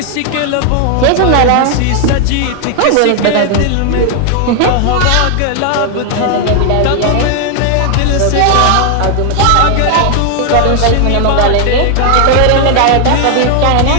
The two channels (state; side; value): different; both; correlation 0.00